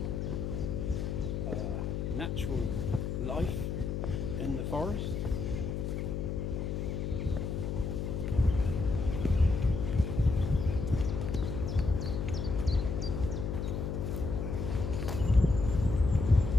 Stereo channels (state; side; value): noise; left; hum, 2 dB below the sound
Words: natural life in the forest.